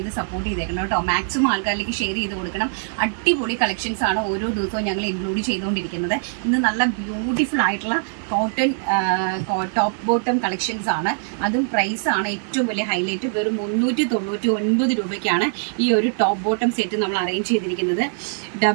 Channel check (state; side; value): silent; left; 64 dB below the other